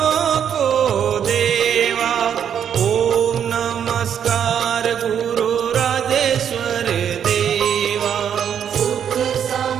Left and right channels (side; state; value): left; quieter; 8.6 dB